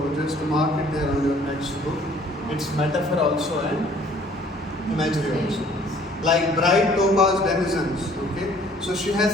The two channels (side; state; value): both; normal; correlation 0.56